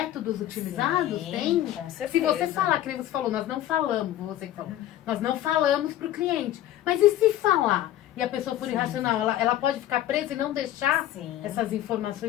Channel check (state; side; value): quieter; right; 13.0 dB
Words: utilizados? Sim, Tem? com certeza. Se você falar, que nem você falou, nós não falamos, você que falou, nós não falamos para o cliente. Mas e se falar? E a pessoa for irracional, ela pode ficar presa e não deixar essas